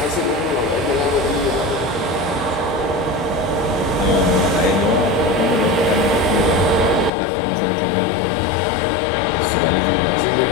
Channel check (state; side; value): drops out; right; at 7.1 s